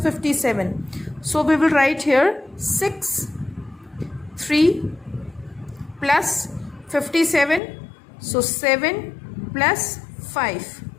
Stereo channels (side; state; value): right; drops out; at 7.6 s